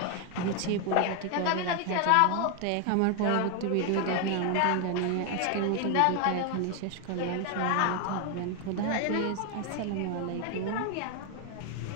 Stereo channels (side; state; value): both; different; correlation 0.01